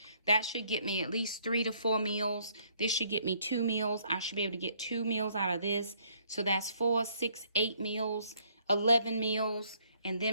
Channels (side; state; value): both; inverted; correlation -0.66